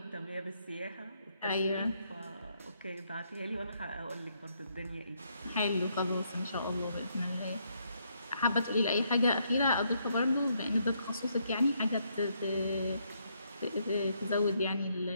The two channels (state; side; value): inverted; both; correlation -0.74